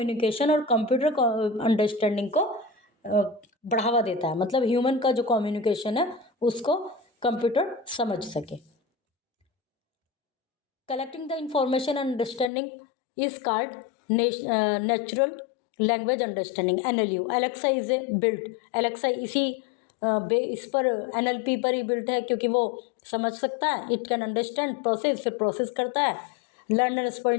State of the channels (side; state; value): right; drops out; at 12.5 s